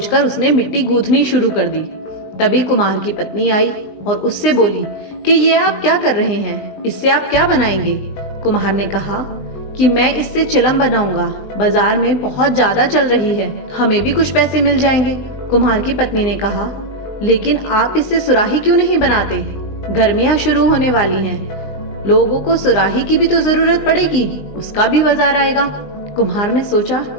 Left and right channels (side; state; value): right; late; 19 ms